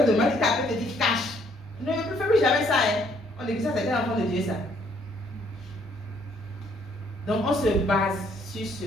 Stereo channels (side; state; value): both; normal; correlation 0.66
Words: de mal, tu t'appelles, te dit cache. Ne fais plus jamais ça. Hein. On dit que ça c'est un enfant de Dieu, ça. Donc on se base sur ce